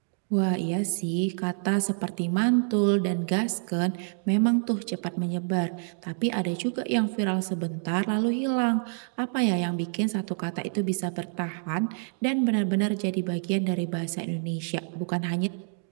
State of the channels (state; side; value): silent; left; 57 dB below the other